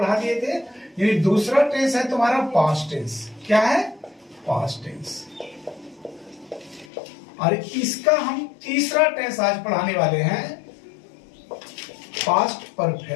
दिए थे। यानी दूसरा टेंस है तुम्हारा पास्ट टेंस। क्या है? Past tense. और इसका हम तीसरा टेंस आज पढ़ाने वाले हैं, past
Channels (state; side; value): drops out; right; at 6.9 s